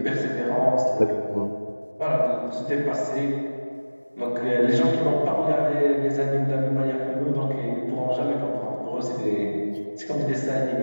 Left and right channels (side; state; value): both; inverted; correlation -1.00